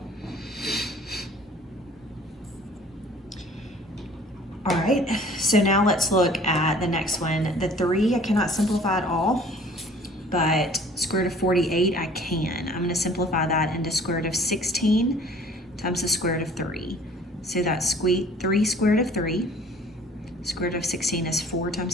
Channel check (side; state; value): both; normal; correlation 0.52